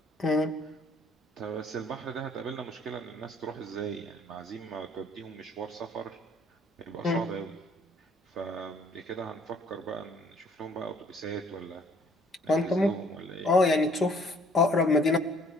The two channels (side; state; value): both; normal; correlation 0.59